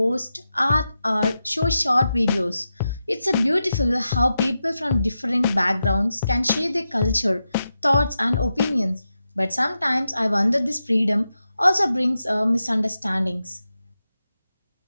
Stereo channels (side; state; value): both; inverted; correlation -0.90